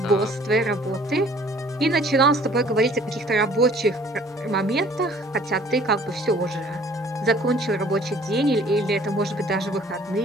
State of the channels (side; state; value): both; normal; correlation 0.54